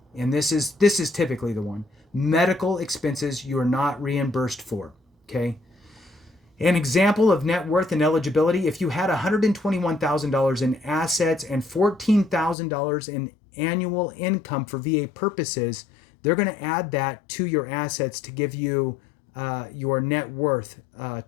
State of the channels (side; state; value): right; drops out; at 12.6 s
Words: and this is typically the one. Medical expenses you are not reimbursed for. Okay. An example of net worth and eligibility: if you had $121,000 in assets and $14,000 in annual income for VA purposes, they're going to add that to your assets to give you your net worth